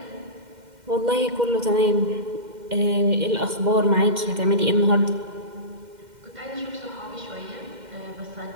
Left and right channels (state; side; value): late; left; 2.1 ms